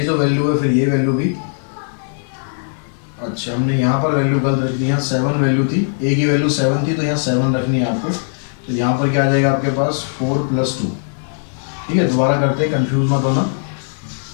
जो वैल्यू है फिर ये वैल्यू भी, अच्छा हमने यहाँ पर वैल्यू गलत रख दी। यहाँ 7 वैल्यू थी, A की वैल्यू 7 थी, तो यहाँ 7 रखनी है आपको। तो यहाँ पर क्या आ जाएगा आपके पास 4 + 2। ठीक है, दोबारा करते हैं, कंफ्यूज मत होना,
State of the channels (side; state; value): right; silent; 64 dB below the other